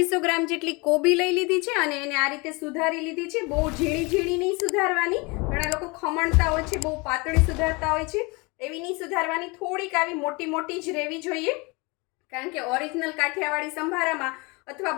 ગ્રામ જેટલી કોબી લઈ લીધી છે અને એને આ રીતે સુધારી લીધી છે। બહુ ઝીણી ઝીણી નહીં સુધારવાની, ઘણા લોકો ખમણતા હોય છે, બહુ પાતળી સુધારતા હોય છે, એવી નહીં સુધારવાની, થોડીક આવી મોટી મોટી જ રહેવી જોઈએ। કારણ કે ઓરિજિનલ કાઠિયાવાડી સંભારામાં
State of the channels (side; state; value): right; quieter; 27.2 dB